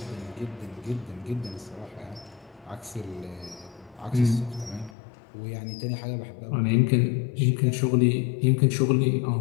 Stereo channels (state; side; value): drops out; right; at 5.0 s